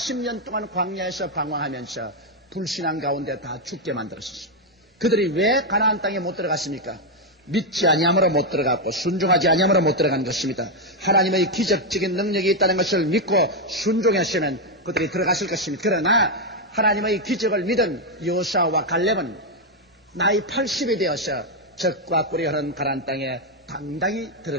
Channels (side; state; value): both; normal; correlation 0.02